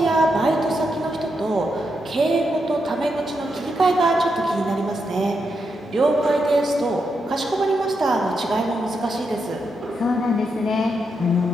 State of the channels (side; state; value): both; normal; correlation 0.83